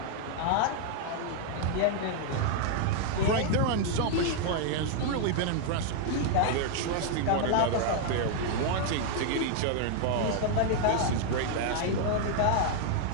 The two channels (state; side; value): different; both; correlation 0.00